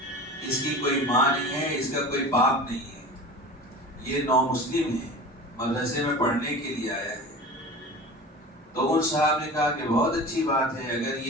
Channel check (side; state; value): both; normal; correlation 0.35